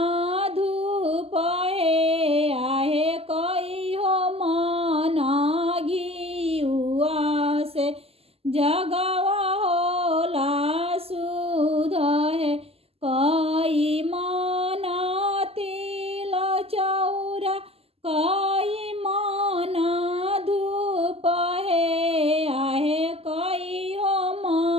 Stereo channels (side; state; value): left; late; 0.29 ms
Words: धूप है आहे कई हो मन घिउआ से जगवा होला शुद्ध है। कई मन तिल चौरा कई मन धूप है आहे कई हो